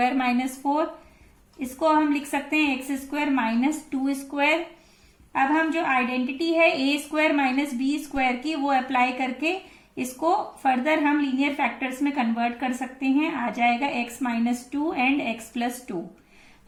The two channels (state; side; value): identical; both; correlation 1.00